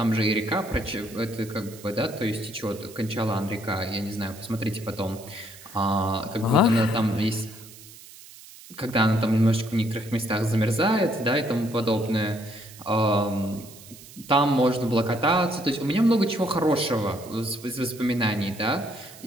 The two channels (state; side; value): noise; right; hiss, 19 dB below the sound